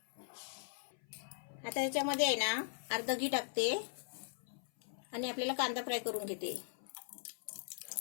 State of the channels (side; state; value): right; silent; 51 dB below the other